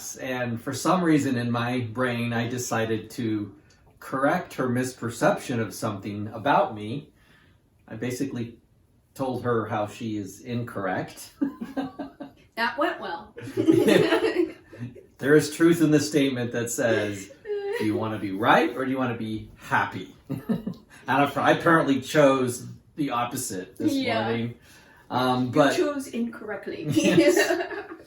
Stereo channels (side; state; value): both; identical; correlation 1.00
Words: and for some reason in my brain, I decided to correct her misperception of something about me. I basically told her how she is incorrect. That went well. There is truth in the statement that says, do you want to be right or do you want to be happy? And I apparently chose the opposite this morning. But you chose incorrectly. Yes.